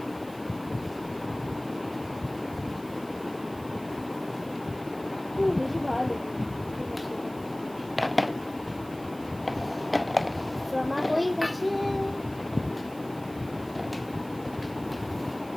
বেশি ভালো দেবো। ঠিক আছে, আমার হয়ে গেছে।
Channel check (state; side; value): noise; right; hiss, 21 dB below the sound